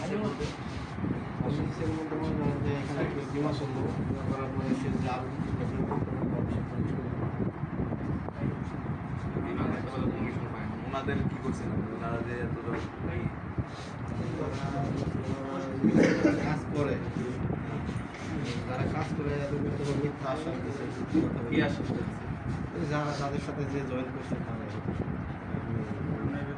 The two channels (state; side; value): identical; both; correlation 1.00